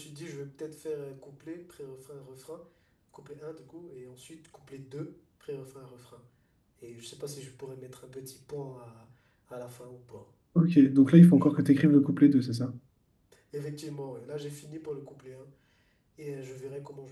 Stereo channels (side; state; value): both; identical; correlation 1.00